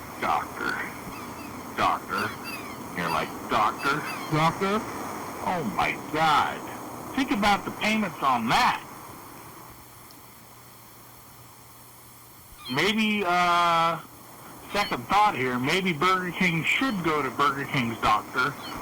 doctor. You're like, doctor? Doctor? Oh my God. Think about the payments on that. Maybe, second thought here, maybe Burger King should go to Burger King's doctor,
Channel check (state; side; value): identical; both; correlation 1.00